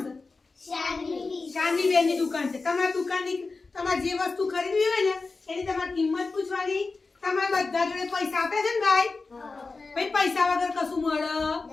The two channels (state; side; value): quieter; right; 3.9 dB